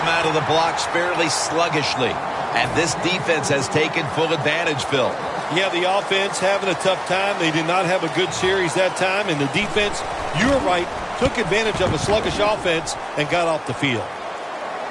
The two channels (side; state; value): both; identical; correlation 1.00